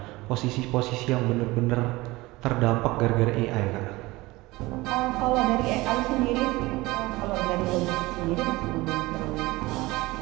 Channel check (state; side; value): quieter; left; 20.8 dB